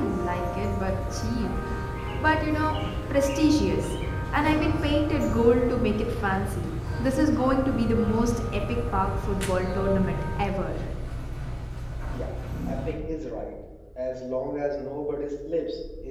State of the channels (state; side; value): identical; both; correlation 1.00